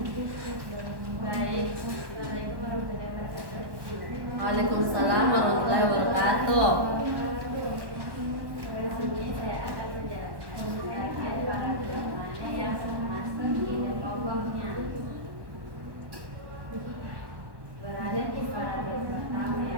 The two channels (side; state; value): left; late; 1.1 ms